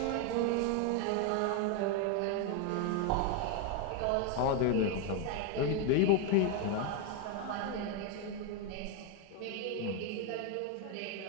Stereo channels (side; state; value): both; different; correlation 0.01